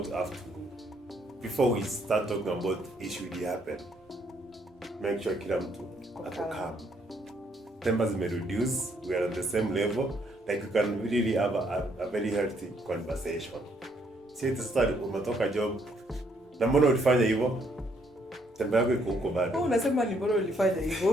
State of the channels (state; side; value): normal; both; correlation 0.70